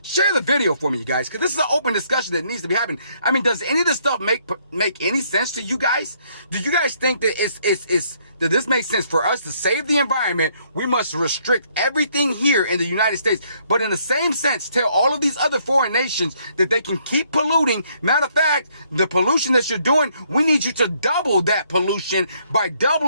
Share the video for me, you guys, because this is an open discussion that needs to be happening. I mean, does any of this stuff make any sense to you guys? Do you guys think that that this makes sense? For us to save the environment, we must restrict everything here in the United States. But in the same sense, tell all of these other foreign nations that they can keep polluting. Matter of fact, the pollution that you're doing, we need you to double that pollution by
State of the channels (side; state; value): both; inverted; correlation -0.68